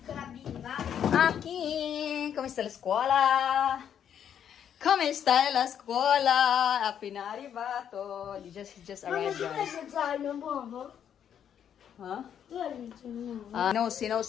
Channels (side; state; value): right; quieter; 8.9 dB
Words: Aquí. ¿Cómo está la escuela? ¿Cómo está la escuela? Appena arrivato. He just arrived, guys. Huh? No,